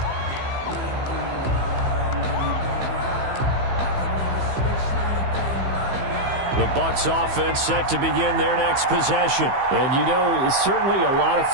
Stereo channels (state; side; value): late; left; 15 ms